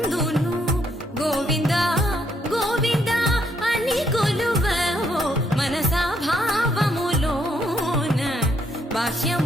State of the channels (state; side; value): normal; both; correlation 0.73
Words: గోవింద గోవింద అని కొలువవో మనసా, భావములోన